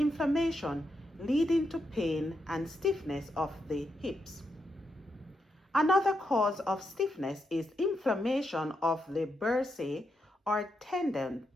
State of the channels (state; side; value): normal; both; correlation 0.83